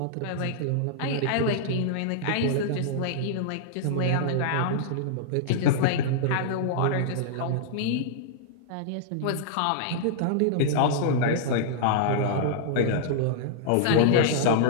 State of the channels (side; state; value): both; different; correlation -0.02